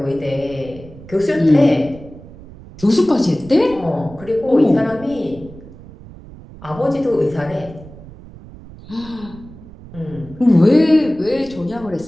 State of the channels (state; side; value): noise; right; rumble, 18 dB below the sound